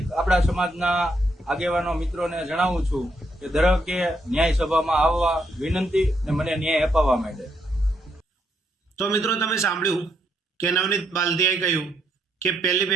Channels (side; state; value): both; normal; correlation 0.76